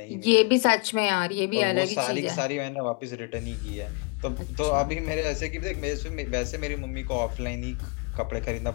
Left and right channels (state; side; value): quieter; right; 33.2 dB